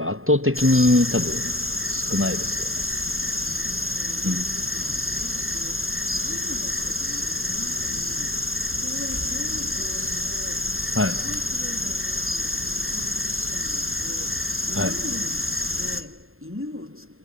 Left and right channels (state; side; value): late; left; 0.61 ms